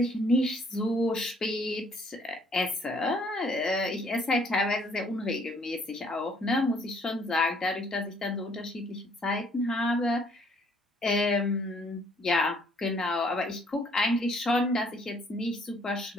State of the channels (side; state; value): both; normal; correlation 0.63